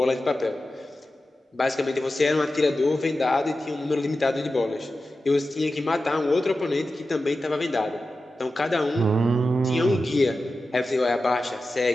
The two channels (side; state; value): both; normal; correlation 0.93